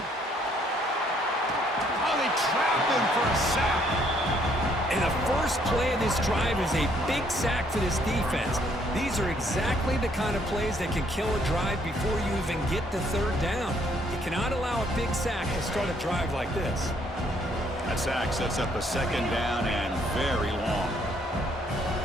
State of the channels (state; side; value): normal; both; correlation 0.67